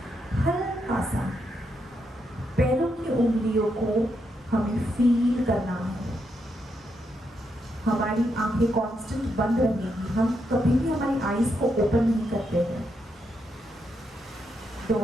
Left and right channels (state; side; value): normal; both; correlation 0.81